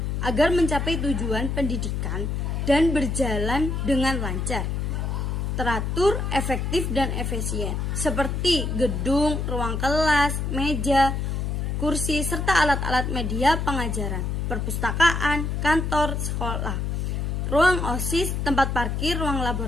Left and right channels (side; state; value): left; noise; hum, 1 dB below the sound